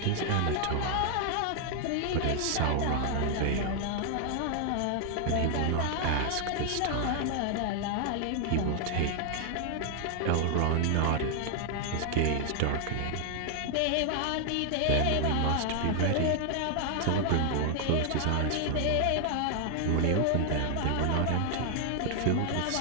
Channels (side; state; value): both; different; correlation 0.00